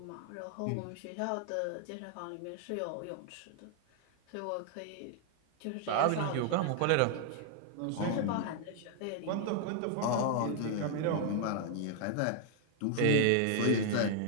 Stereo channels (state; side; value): different; both; correlation 0.00